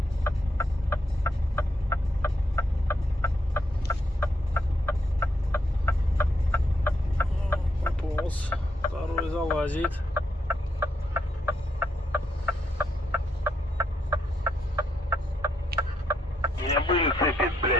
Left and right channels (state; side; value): normal; both; correlation 0.77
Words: Пополз. Второй залазит. У меня были цепи,